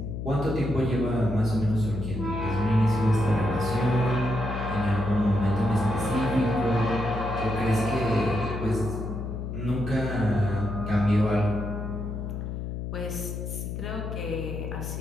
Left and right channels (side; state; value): left; noise; hum, 5 dB below the sound